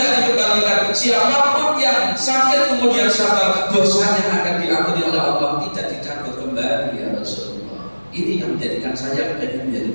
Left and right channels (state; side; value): inverted; both; correlation -1.00